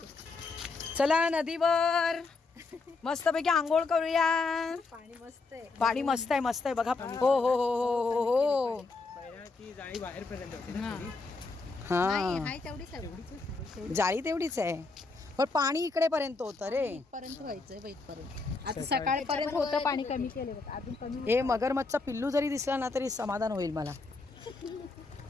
चला नदीवर मस्तपैकी आंघोळ करूया. पाणी मस्त आहे. पाणी मस्त आहे मस्त आहे बघा. हो हो हो हो हो हो. जाळी बाहेरपर्यंत होती ना. हा जाळी तेवढीच आहे पण पाणी इकडे पर्यंत होतं रे. पर्यंत व्हायचंय इथपर्यंत. आता सकाळपर्यंत होतं पाणी. कमी केले अजून कमी. हे मगरमच्छचा पिल्लू जरी दिसला ना तरी समाधान होईल मला.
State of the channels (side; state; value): right; quieter; 3.8 dB